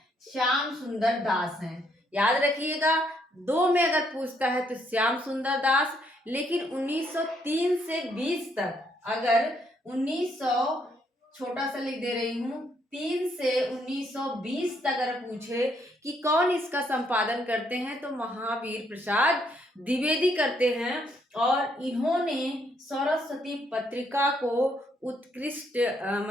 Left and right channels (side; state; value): both; normal; correlation 0.72